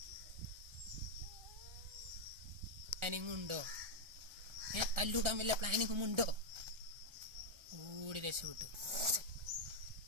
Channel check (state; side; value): late; left; 1.4 ms